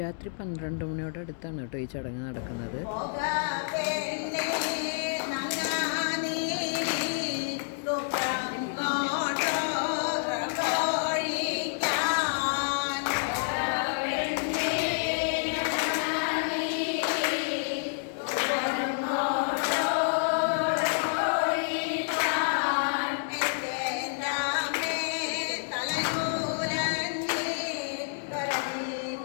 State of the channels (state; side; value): silent; right; digital silence